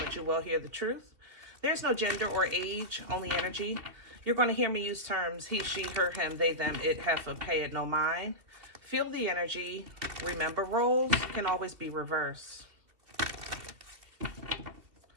you will hear the truth. There's no gender or age, only energy. You're going to hear me use terms he, she, her, him, they, them, it, heifer, pay it, no mind. Feel the energy. Remember, roles can always be reversed.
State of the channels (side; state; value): left; late; 2.7 ms